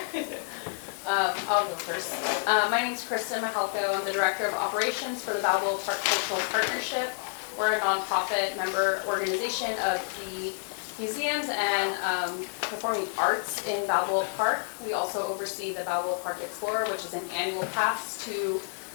I'll go first. My name is Kristen Mahalko. I'm the Director of Operations for the Balba Park Cultural Partnership. We're a nonprofit member organization of the museums and performing arts in Balboa Park. We also oversee the Balboa Park Explorer, which is an annual pass to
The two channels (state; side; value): silent; right; digital silence